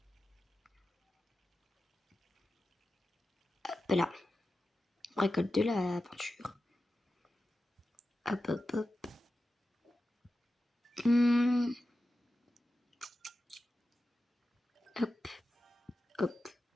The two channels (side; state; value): both; normal; correlation 0.92